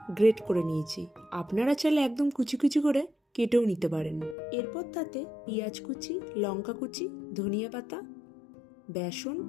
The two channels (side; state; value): right; drops out; at 4.4 s